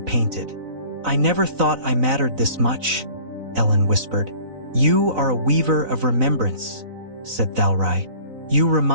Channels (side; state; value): left; late; 3.9 ms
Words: painted. "I never thought I mattered this much," Ellen whispered. "You are a weaver of remembrance," said Thalrai. "You